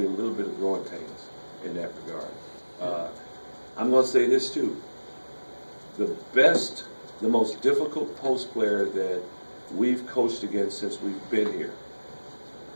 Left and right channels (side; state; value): both; inverted; correlation -1.00